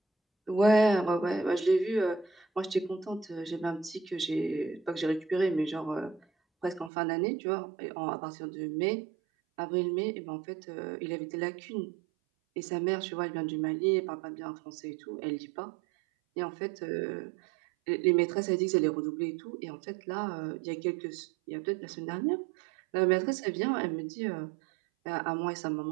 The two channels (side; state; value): left; drops out; at 6.9 s